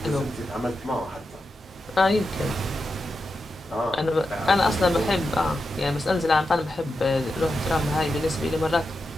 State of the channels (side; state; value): both; normal; correlation 0.89